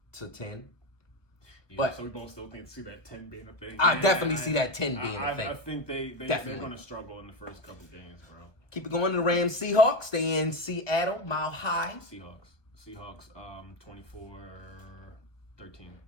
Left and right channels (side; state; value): right; late; 1.2 ms